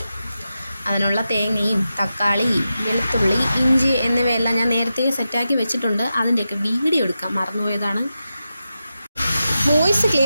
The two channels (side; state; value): both; inverted; correlation -0.90